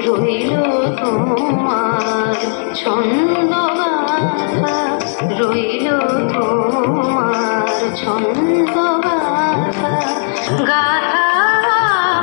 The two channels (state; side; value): silent; right; digital silence